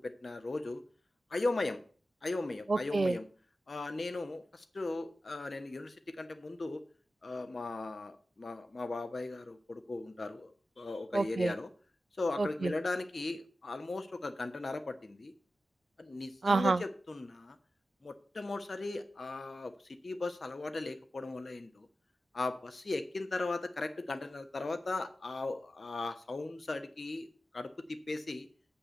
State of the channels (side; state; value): both; normal; correlation 0.93